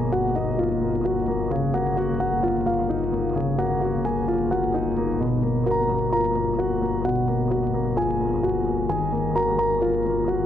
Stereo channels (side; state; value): left; noise; hum, 2 dB below the sound